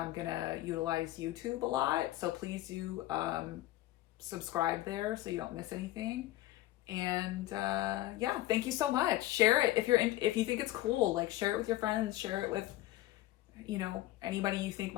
going to utilize YouTube a lot. So please do subscribe there so you don't miss anything. And yeah, thank you so much. Share it if you think it's cool. Like, share it with your friends, share it with, you know, anybody you think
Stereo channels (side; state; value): right; quieter; 16.1 dB